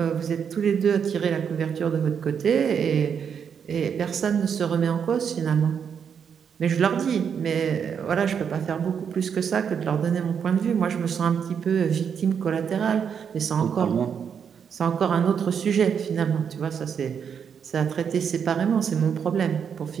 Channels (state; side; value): quieter; left; 7.3 dB